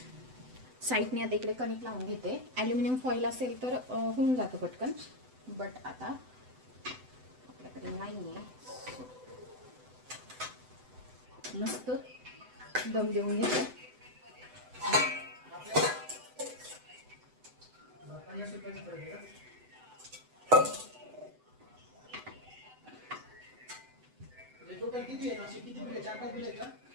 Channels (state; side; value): late; left; 7.9 ms